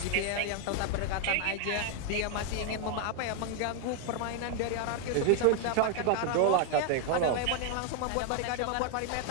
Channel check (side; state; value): both; different; correlation 0.01